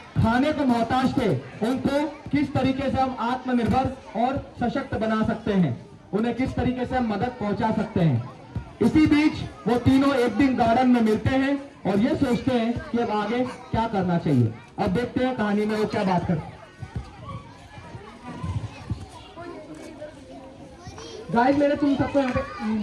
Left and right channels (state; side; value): identical; both; correlation 1.00